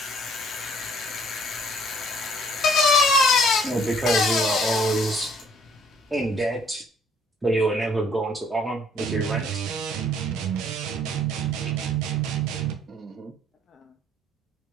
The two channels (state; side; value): normal; both; correlation 0.60